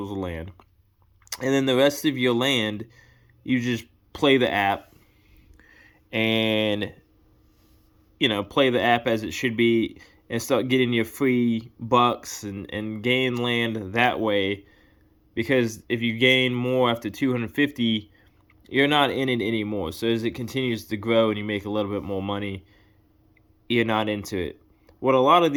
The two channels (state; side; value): identical; both; correlation 1.00